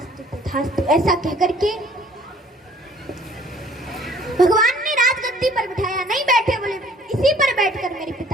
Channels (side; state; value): both; normal; correlation 0.55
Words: तथास्तु ऐसा कहकर के भगवान ने राजगद्दी पर बिठाया। नहीं बैठे, बोले इसी पर बैठकर मेरे